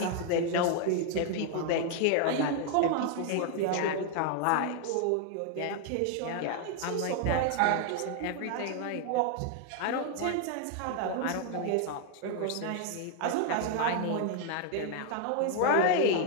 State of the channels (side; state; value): both; different; correlation 0.00